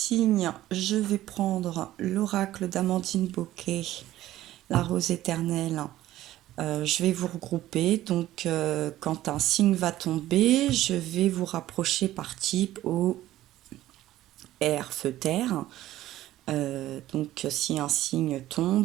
je vais prendre l'oracle d'Amandine Bocquet, la rose éternelle. Je vais vous regrouper, donc quand un signe va tomber, je vais vous rapprocher par type au air, feu, terre. Donc si un signe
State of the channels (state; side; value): quieter; left; 14.6 dB